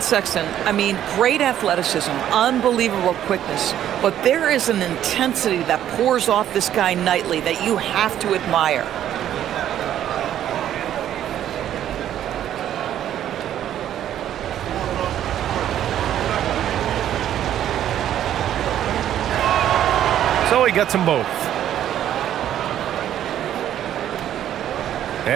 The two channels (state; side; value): quieter; left; 11.1 dB